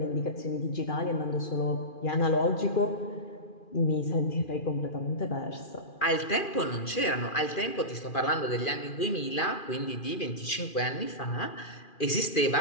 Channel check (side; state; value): right; late; 2.4 ms